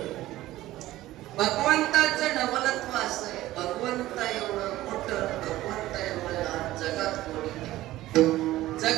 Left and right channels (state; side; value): quieter; left; 15.9 dB